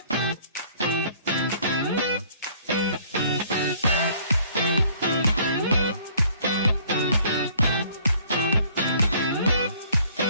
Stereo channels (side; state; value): both; inverted; correlation -0.58